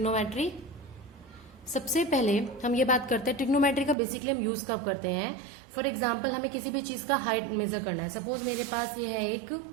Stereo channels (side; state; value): left; drops out; at 4.0 s